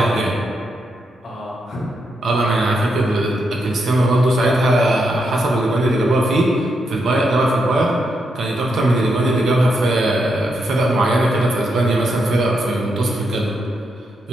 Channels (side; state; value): both; normal; correlation 0.82